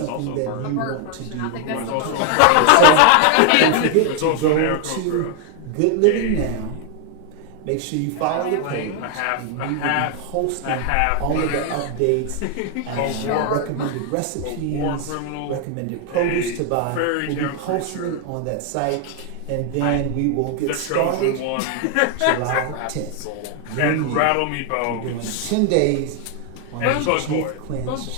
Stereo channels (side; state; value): both; different; correlation 0.00